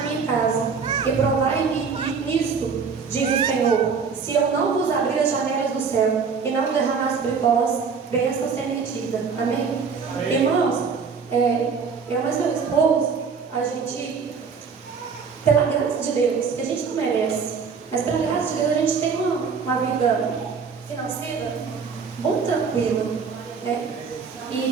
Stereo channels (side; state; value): left; quieter; 5.6 dB